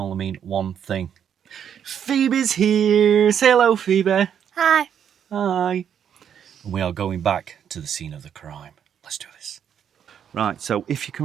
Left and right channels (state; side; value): quieter; left; 8.6 dB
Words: only mean one thing. Phoebe's here. Say hello, Phoebe. Hi. Hi. And we are going back to the scene of the crime. Let's do this. Right, so if you can